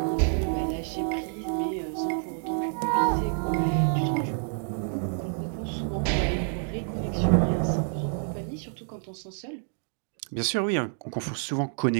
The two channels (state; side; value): silent; left; 59 dB below the other